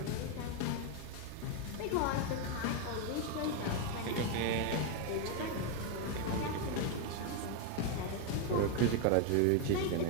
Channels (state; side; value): different; both; correlation 0.01